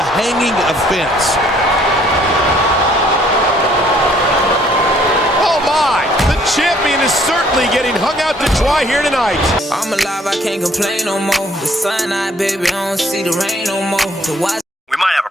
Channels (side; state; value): both; normal; correlation 0.61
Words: hanging offense. Oh my, the champion is certainly getting hung out to dry here tonight. I'm alive, I can't complain no more. The sun out, baby, I don't see the rain no more. We might have a